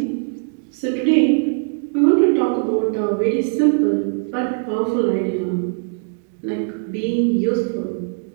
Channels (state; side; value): silent; left; 55 dB below the other